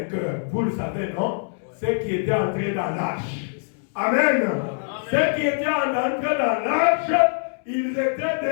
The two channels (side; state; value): right; silent; 63 dB below the other